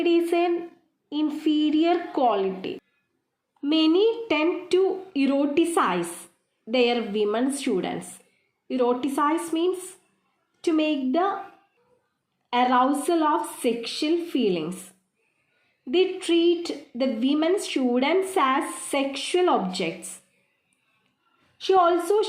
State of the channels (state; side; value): identical; both; correlation 1.00